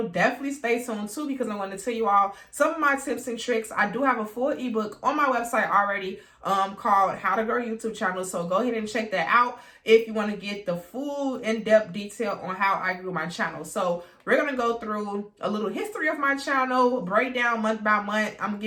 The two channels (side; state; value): both; identical; correlation 1.00